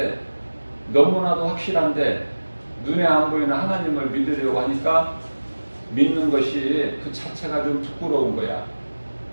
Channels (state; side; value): inverted; both; correlation -1.00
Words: 너무나도 확실한데 눈에 안 보이는 하나님을 믿으려고 하니까 믿는 것이 그 자체가 좀 부끄러운 거야.